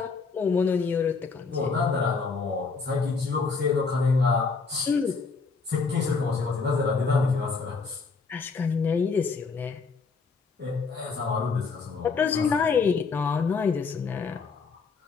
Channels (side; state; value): right; quieter; 4.8 dB